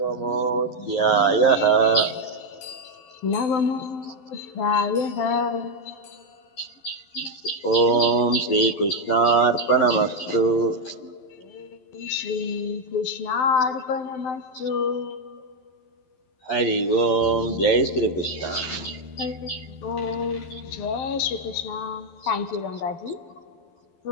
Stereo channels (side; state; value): right; late; 12 ms